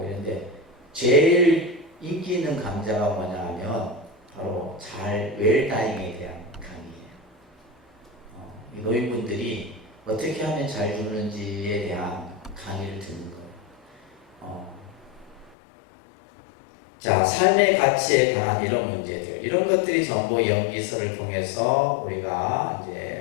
이런데 제일 인기 있는 강좌가 뭐냐면 바로 잘 웰다잉에 대한 강의예요. 이 노인분들이 어떻게 하면 잘 죽는지에 대한 강의를 듣는 거예요. 자, 삶의 가치에 관한 이런 문제들, 이런 것들이 전부 연기서를 통해서 우리가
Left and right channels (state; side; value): drops out; right; at 15.6 s